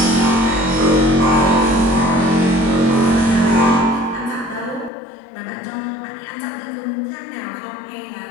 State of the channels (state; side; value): drops out; right; at 4.9 s